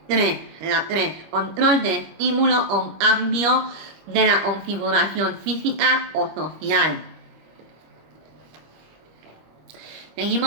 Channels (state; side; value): late; left; 25 ms